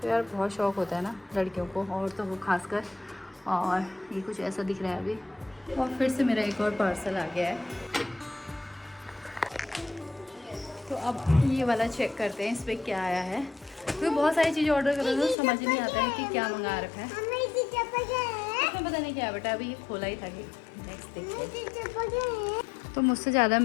तो यार बहुत शौक़ होता है ना लड़कियों को, और तो वो खासकर। और ये कुछ ऐसा दिख रहा है अभी। और फिर से मेरा एक और पार्सल आ गया है, तो अब ये वाला चेक करते हैं इस पर क्या आया है। क्योंकि बहुत सारी चीज़ें ऑर्डर कर रहे हैं तो समझ ही नहीं आता है कि क्या मंगा रखा है। इसमें पता नहीं क्या है बेटा, अभी ये खोला ही था कि नेक्स्ट देखिए। तो मुझसे ज़्यादा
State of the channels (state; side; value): drops out; right; at 15.4 s